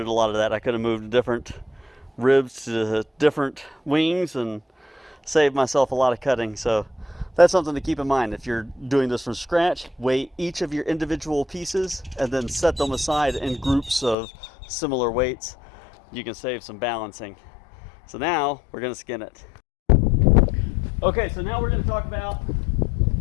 a lot of that. I could have moved different ribs to different wings and saved myself a lot of cutting. So that's something to keep in mind. If you're doing this from scratch, weigh each of your individual pieces and then set them aside in groups of similar weights. You can save some balancing. So now we're going to skin it. Okay, so now we're going to talk about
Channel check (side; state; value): right; drops out; at 14.2 s